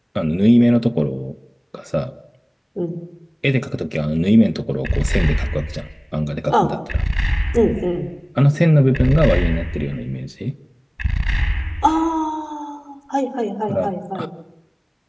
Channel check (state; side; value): identical; both; correlation 1.00